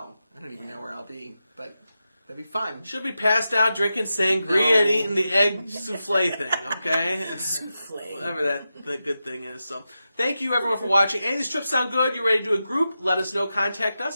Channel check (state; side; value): inverted; both; correlation -0.90